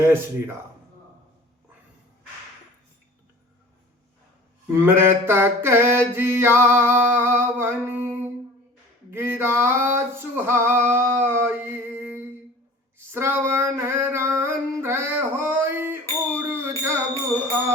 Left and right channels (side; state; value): both; normal; correlation 0.43